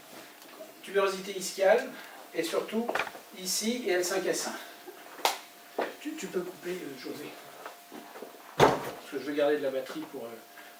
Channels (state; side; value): identical; both; correlation 1.00